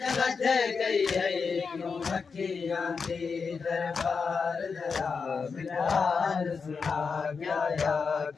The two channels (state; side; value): quieter; right; 5.3 dB